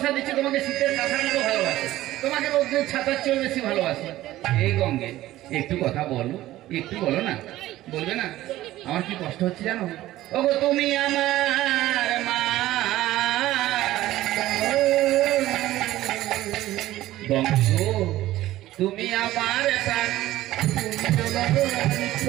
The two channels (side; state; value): left; quieter; 15.3 dB